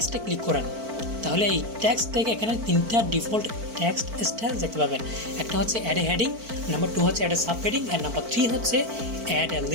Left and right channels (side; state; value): left; late; 4.5 ms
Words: ক্লিক করেন তাহলে এই টেক্সট থেকে এখানে তিনটা ডিফল্ট টেক্সট স্টাইল দেখতে পাবেন। একটা হচ্ছে অ্যাড এ হেডিং, নাম্বার 2 হচ্ছে অ্যাড এ সাব হেডিং, আর নাম্বার 3 হচ্ছে add a